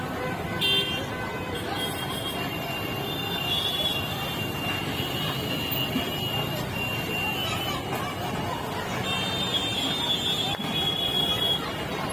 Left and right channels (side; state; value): both; identical; correlation 1.00